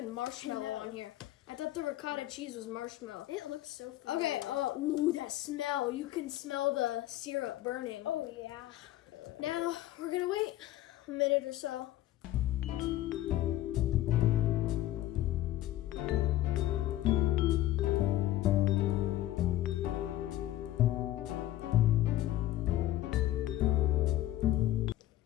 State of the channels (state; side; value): quieter; right; 14.6 dB